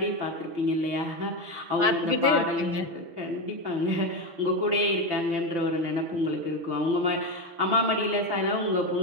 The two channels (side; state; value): left; late; 6.3 ms